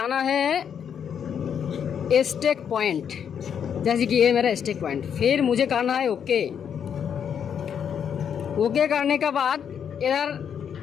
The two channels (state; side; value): quieter; right; 8.0 dB